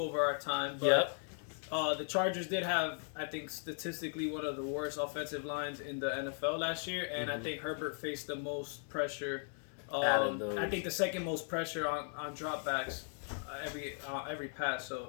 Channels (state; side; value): silent; right; 53 dB below the other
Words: our time. But the Chargers did have, I think, statistically one of the worst offensive lines in the NFL last year, and I think Herbert faced the most pressure. I think the second most pressure on dropbacks every pass.